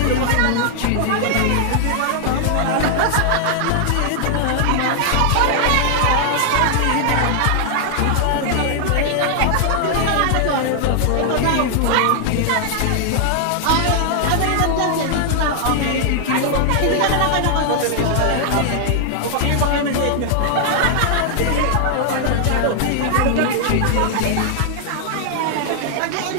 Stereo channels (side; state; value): both; different; correlation 0.00